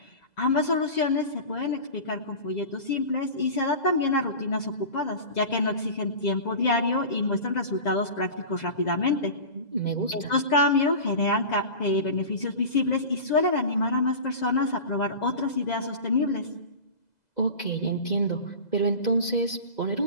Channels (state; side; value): late; right; 2.0 ms